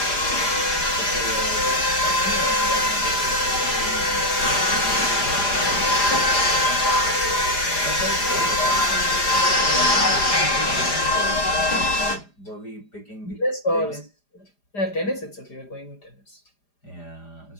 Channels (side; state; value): right; late; 4.9 ms